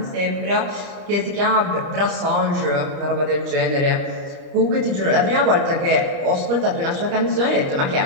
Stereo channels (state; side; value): late; left; 30 ms